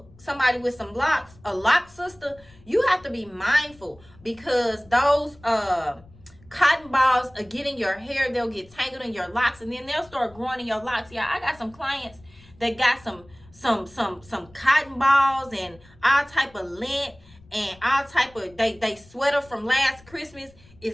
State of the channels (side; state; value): left; noise; rumble, 26 dB below the sound